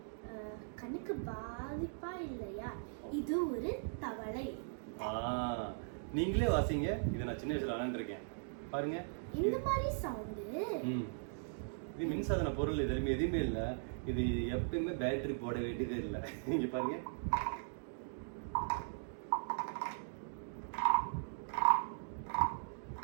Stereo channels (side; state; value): left; silent; digital silence